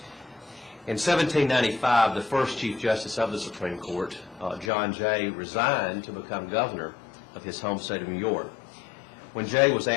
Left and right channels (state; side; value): drops out; right; at 4.7 s